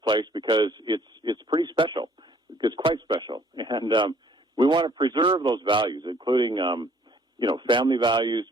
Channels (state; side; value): normal; both; correlation 0.60